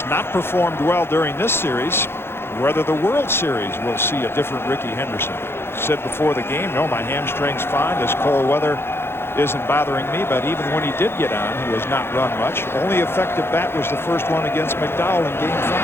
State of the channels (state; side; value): late; right; 0.11 ms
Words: not performed well during this series. Whether the World Series will see a different Ricky Henderson. Said before the game, no, my hamstring's fine. This cold weather isn't bothering me. But even when he did get on, he has not run much. Only effective bat was the first one against McDowell in Game